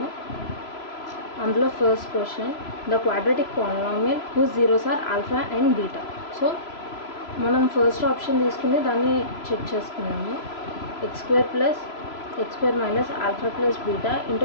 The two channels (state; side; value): late; right; 3.0 ms